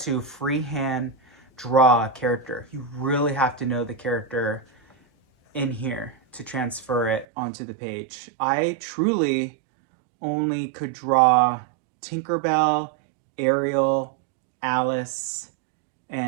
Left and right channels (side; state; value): left; drops out; at 7.2 s